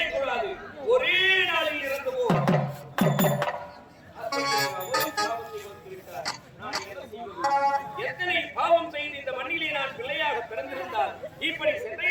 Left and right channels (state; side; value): identical; both; correlation 1.00